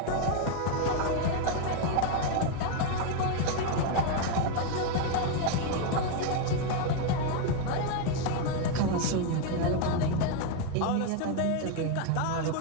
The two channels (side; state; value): both; different; correlation 0.01